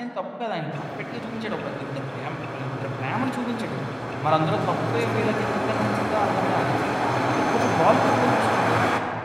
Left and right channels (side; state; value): both; identical; correlation 1.00